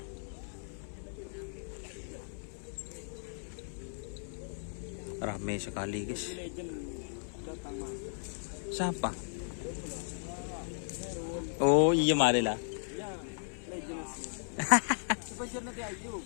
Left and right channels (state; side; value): silent; right; 54 dB below the other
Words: Ramai sekali guys. Siapa? Oh iya mari lah.